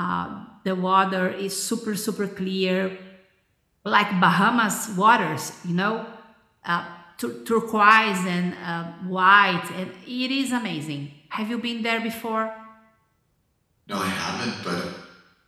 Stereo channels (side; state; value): both; identical; correlation 1.00